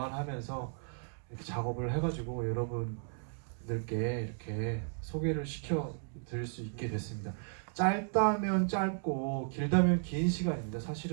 이렇게 작업을 해가지고 여러분들께 이렇게 소개를 시켜 드릴 수 있게 됐습니다. 짧다면 짧고 길다면 긴 시간입니다.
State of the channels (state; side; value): silent; left; 55 dB below the other